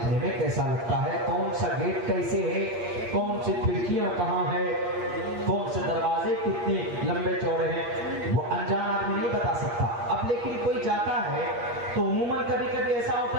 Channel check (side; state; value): left; late; 8.5 ms